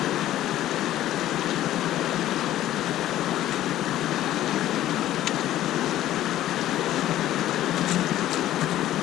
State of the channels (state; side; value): quieter; right; 13.4 dB